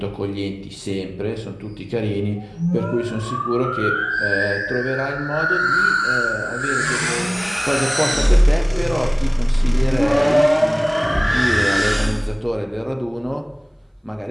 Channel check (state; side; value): identical; both; correlation 1.00